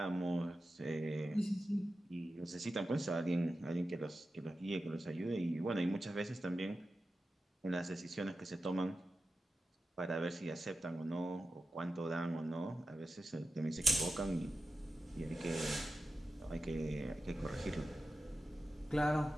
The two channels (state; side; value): normal; both; correlation 0.92